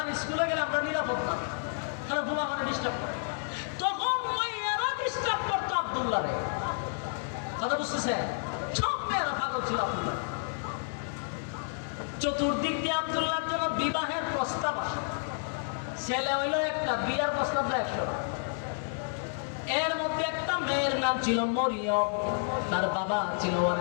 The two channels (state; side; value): silent; right; 56 dB below the other